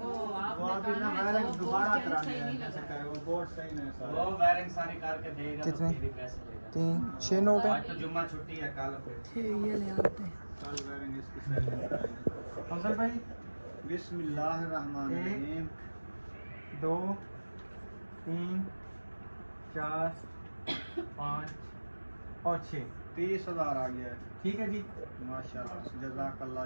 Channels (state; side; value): inverted; both; correlation -1.00